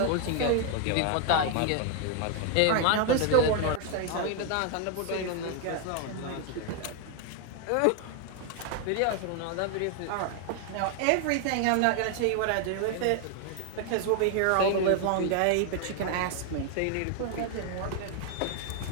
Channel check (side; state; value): both; different; correlation 0.00